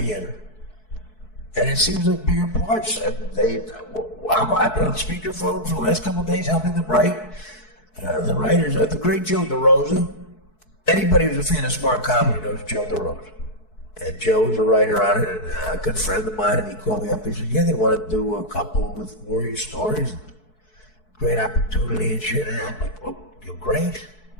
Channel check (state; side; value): late; right; 4.6 ms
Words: in. And it seems like bigger parts. And I've been on speakerphone for the last couple of days helping them write. The writers, the great Joe DeRosa. Anybody who's a fan of smart comedy knows Joe DeRosa. And Joe was a writer on it, and a good friend of mine, and he called me up. He said, yeah, they want to do a couple with Warrior stories. Great opportunity and shit. And I'm like, well, you're great.